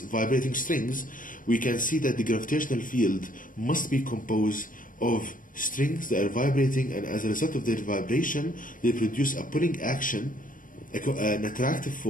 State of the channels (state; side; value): late; right; 0.39 ms